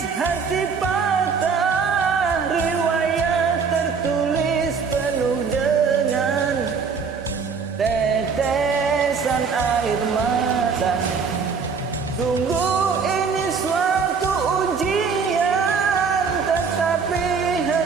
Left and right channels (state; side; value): quieter; left; 5.6 dB